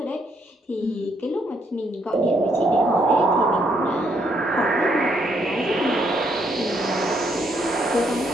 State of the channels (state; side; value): normal; both; correlation 0.73